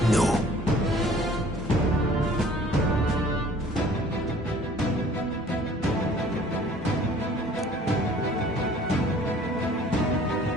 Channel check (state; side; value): normal; both; correlation 0.53